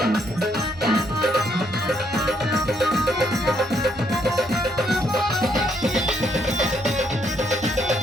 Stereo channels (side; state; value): both; normal; correlation 0.72